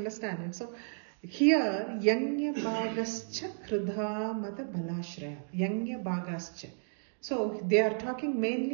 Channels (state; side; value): silent; left; digital silence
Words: it. So here, Yanya Bhagascha Kridha Mata Balashraya. Yanya Bhagascha. So they are talking